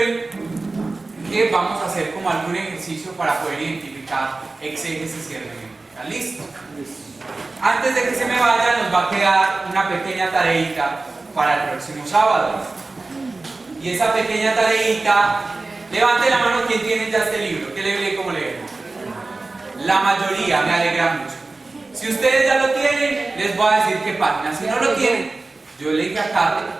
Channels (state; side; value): quieter; left; 3.4 dB